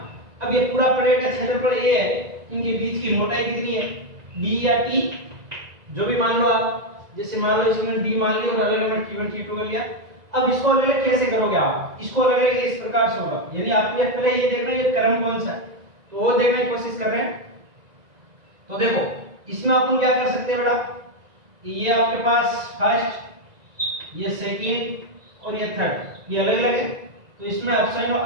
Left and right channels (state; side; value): late; left; 1.9 ms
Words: अब ये पूरा प्लेट का क्षेत्रफल A है, इनके बीच की मोटाई कितनी है D या T, जो भी मान लो आप। जैसे मान लो इसमें D मान लिया और अलग अलग T1 T2 कर लिया। अब इसको अलग अलग कैसे करोगे आप, इसको अलग अलग इस प्रकार से होगा, यानी आपको पहले ये देखना है ये क्रम कौन सा है, तो वो देखने की कोशिश कर रहे हैं। तो देखो इसमें अपन क्या कर सकते हैं बेटा, ये आपके पास फर्स्ट, ये सेकंड और ये थर्ड, ये अलग अलग है। तो इसमें एप्सिलॉन